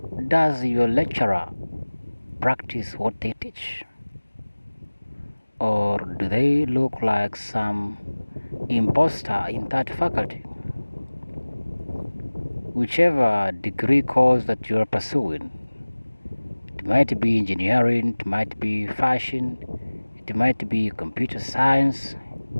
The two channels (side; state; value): both; inverted; correlation -1.00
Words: does your lecturer practice what they teach, or do they look like some imposter in that faculty? Whichever degree course that you are pursuing, it might be engineering, it might be fashion, it might be computer science,